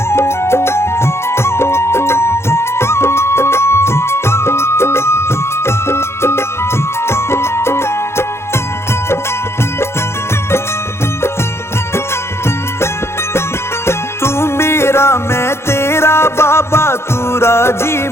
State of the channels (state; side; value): late; right; 0.12 ms